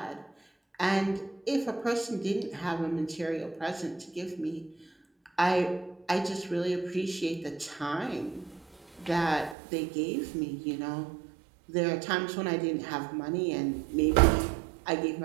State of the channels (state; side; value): drops out; left; at 9.6 s